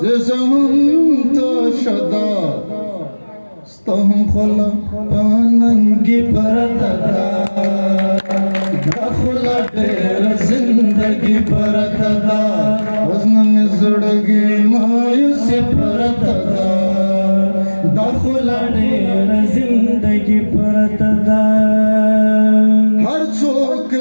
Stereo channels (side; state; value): both; inverted; correlation -1.00